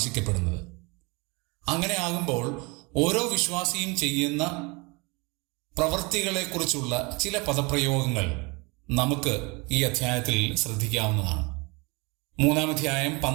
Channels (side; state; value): left; quieter; 27.9 dB